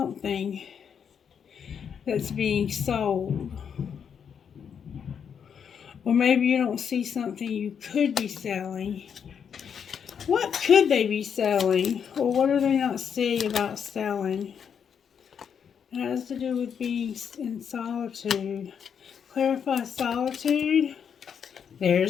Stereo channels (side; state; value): right; quieter; 7.4 dB